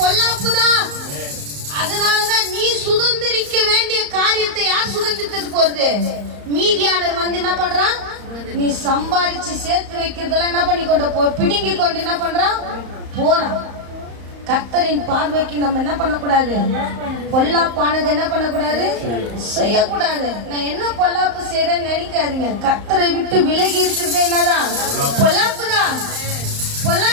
பொல்லாப்பு தான். அதனாலதான் நீ சுதந்திரிக்க வேண்டிய காரியத்தை யார் சுதந்திரித்து போறது? மீதியானர் வந்து என்ன பண்றான்? நீ சம்பாதிச்சு சேர்த்து வைக்கிறதெல்லாம் என்ன பண்ணி கொண்டு பிடுங்கி கொண்டு என்ன பண்றான்? போறான். கர்த்தரின் பார்வைக்கு நம்ம என்ன பண்ணக்கூடாது? பொல்லாப்பானது என்ன பண்ணக்கூடாது? செய்யக்கூடாது. நான் என்ன பொல்லாப்பு செய்யறேன்னு நினைக்காதீங்க. கர்த்தரை விட்டு விலகி இருக்கிறது என்னதான்? பொல்லாப்புதான்.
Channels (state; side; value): late; left; 35 ms